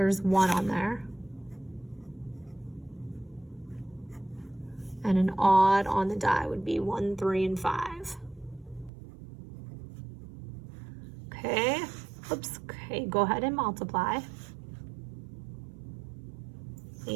1 on there. And an odd on the die would be 1, 3, and 5. Okay, oops, okay, go ahead and multiply.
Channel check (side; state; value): left; drops out; at 8.9 s